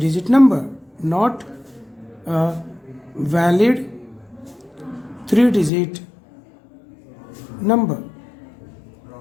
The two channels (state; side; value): drops out; right; at 5.7 s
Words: number, not a valid 3 digit number.